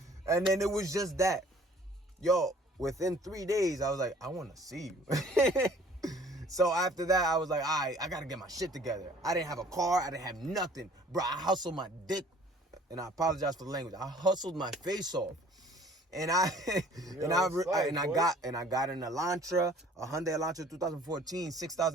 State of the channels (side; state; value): both; normal; correlation 0.53